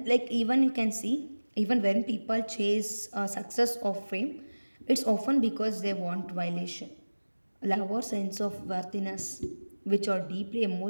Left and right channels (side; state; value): both; inverted; correlation -1.00